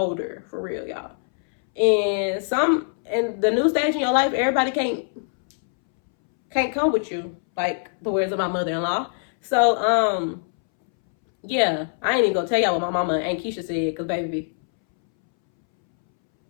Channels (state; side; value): silent; right; 63 dB below the other